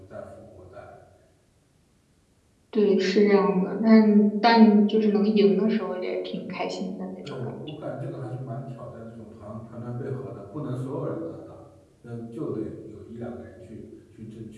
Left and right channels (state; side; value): identical; both; correlation 1.00